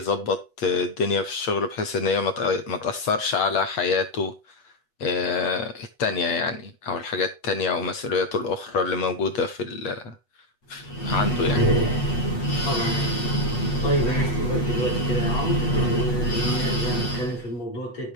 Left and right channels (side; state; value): right; late; 8.2 ms